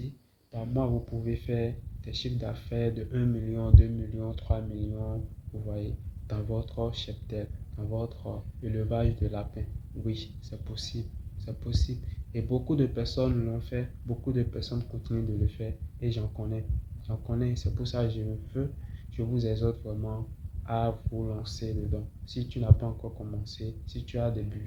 par mois, vous pouvez faire des chiffres d'affaires de 1 million, 2 millions, 3 millions, vous voyez, dans votre cheptel, dans votre élevage de lapins. Oui, c'est possible, c'est possible. Et beaucoup de personnes l'ont fait, beaucoup de personnes continuent de le faire, et j'en connais, c'est pour ça que je vous exhorte vraiment à vous lancer dedans. Si tu n'as pas encore commencé, si tu as des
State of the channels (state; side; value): identical; both; correlation 1.00